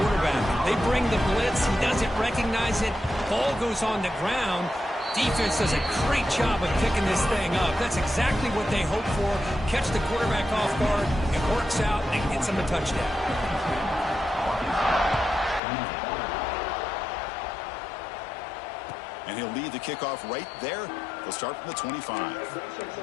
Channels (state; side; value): drops out; right; at 15.6 s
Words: They bring the blitz. He doesn't recognize it. Ball goes on the ground. Defense does a great job of picking this thing up. That's exactly what they hope for. Catch the quarterback off guard. It works out and gets him a touchdown. And he'll lead the kickoff right there. They'll start from the 25.